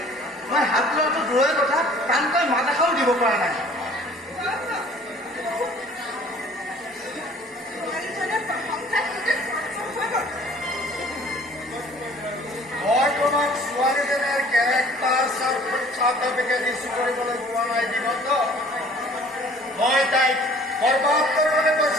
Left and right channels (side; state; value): both; normal; correlation 0.52